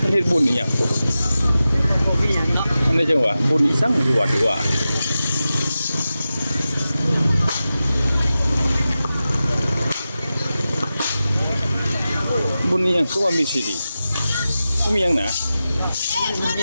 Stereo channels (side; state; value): both; inverted; correlation -0.93